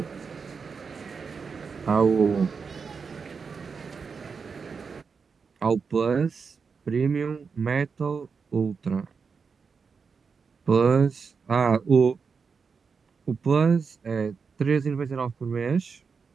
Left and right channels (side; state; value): left; quieter; 5.5 dB